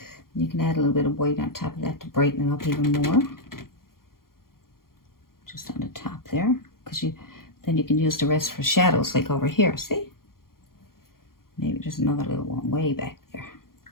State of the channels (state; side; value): late; right; 0.92 ms